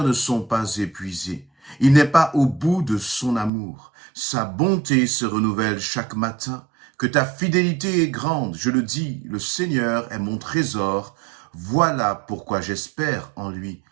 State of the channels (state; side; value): drops out; left; at 3.5 s